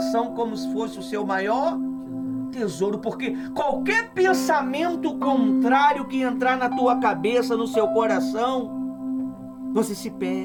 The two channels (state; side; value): identical; both; correlation 1.00